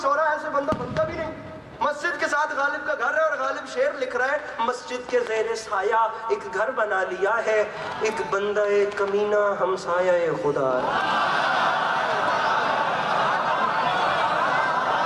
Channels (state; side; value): identical; both; correlation 1.00